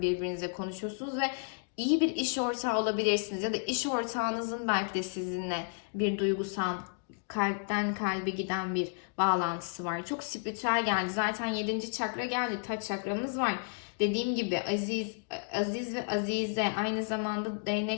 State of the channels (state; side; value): silent; right; 56 dB below the other